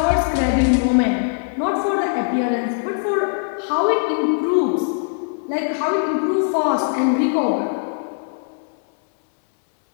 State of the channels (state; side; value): silent; right; digital silence